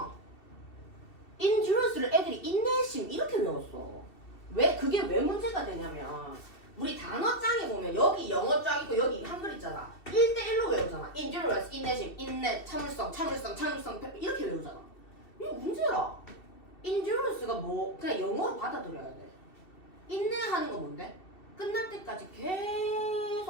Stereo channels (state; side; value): late; right; 2.7 ms